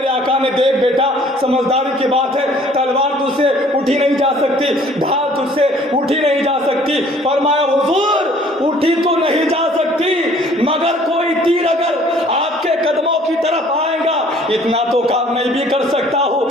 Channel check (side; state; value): both; normal; correlation 0.55